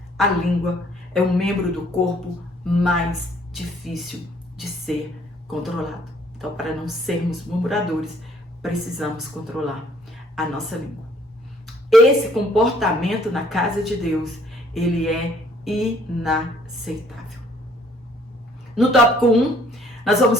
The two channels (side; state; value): both; normal; correlation 0.62